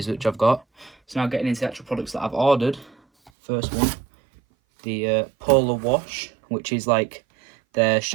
which I've got. So now getting into the actual products that I've ordered. First one, the Polar Wash, which is like the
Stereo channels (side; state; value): left; drops out; at 3.3 s